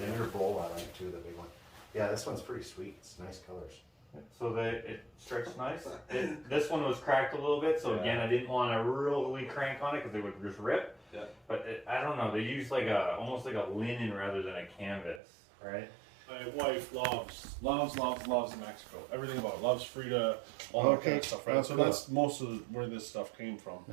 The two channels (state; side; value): drops out; left; at 15.2 s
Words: inner bowl I like too, the big one. Yeah, this one's pretty sweet. It's nice colors. so that it stretched nice. This one was cracked a little bit, so again, I didn't want to really crank on it because it would just rip. Yeah. But I don't know, they use like almost like a linen rather than a canvas, right? My wife loves Mexico. Everything about it. Loves Frida, all that kind of stuff, right? Oh, So cool. that's most of where this stuff came from.